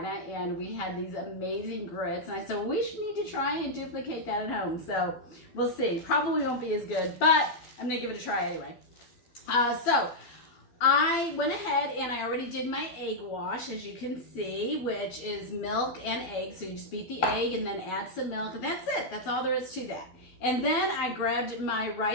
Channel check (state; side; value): late; right; 12 ms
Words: and we had these amazing grits, and I said, well, we should need to try and duplicate that at home. So we'll see. Probably won't be as good, but I'm gonna give it a try anyway. So I went ahead and I already did my egg wash, as you can see, which is milk and egg. So you just beat the egg and then add some milk, and that's it. That's all there is to that. And then I grabbed my